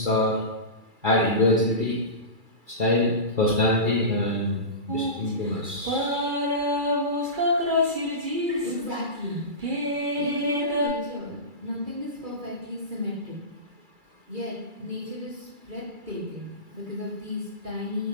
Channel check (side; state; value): left; late; 2.3 ms